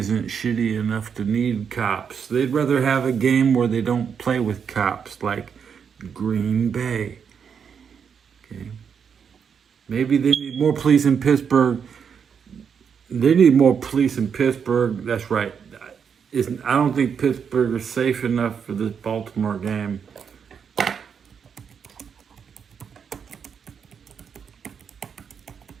shitty enough to need cops. They'd rather have a game where they don't play with cops, like Green Bay. Okay. Maybe they need more police in Pittsburgh. They need more police in Pittsburgh. That's right. I don't think Pittsburgh is safe enough for this Baltimore game.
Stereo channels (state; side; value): quieter; left; 7.0 dB